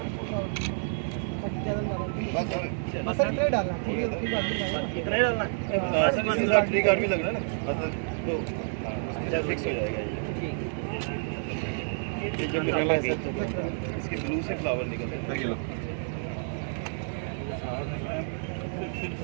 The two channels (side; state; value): left; silent; digital silence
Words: बस इतना डालना, इतना ही डालना ट्री कार्ड भी लगना है ना, बस तो फिक्स हो जाएगा ये जब निकला है इसके ब्लू से फ्लावर निकलते हैं।